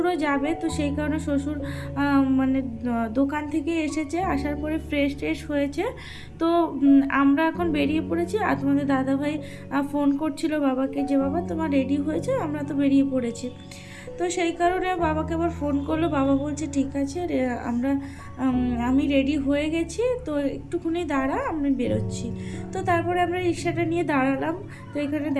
যাবে, তো সেই কারণে শ্বশুর মানে দোকান থেকে এসেছে, আসার পরে ফ্রেশ হয়েছে। তো আমরা এখন বেরিয়ে পড়েছি। আর তোমাদের দাদাভাই ফোন করছিল বাবাকে, যে বাবা তোমার রেডি হয়েছে, আমরা তো বেরিয়ে পড়েছি। তো সেই কারণে বাবাকে আবার ফোন করলো, বাবা বলছে ঠিক আছে আমি রেডি হয়ে গেছি, তো একটুখানি দাঁড়া, আমি বেরোচ্ছি। তো তারপরে আমরা রিক্সাটা নিয়ে দাঁড়ালাম। তো এখানে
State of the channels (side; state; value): both; identical; correlation 1.00